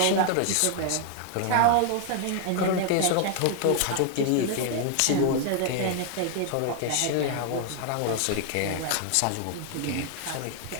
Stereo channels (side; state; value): both; different; correlation 0.00